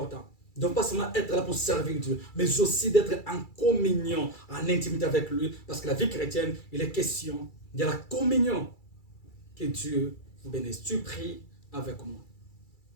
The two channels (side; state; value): right; late; 2.3 ms